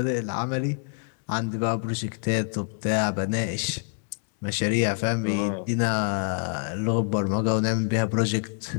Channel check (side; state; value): right; silent; digital silence